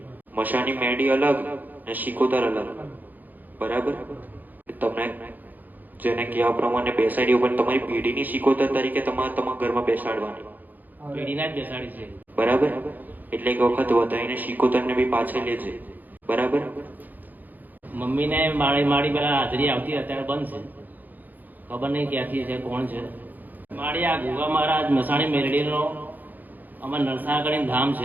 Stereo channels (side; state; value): left; late; 0.084 ms